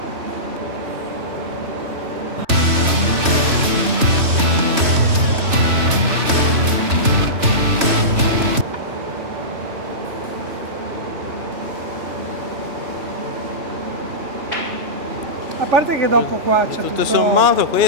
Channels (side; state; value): left; late; 3.2 ms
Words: A parte che dopo qua c'è Tutto sommato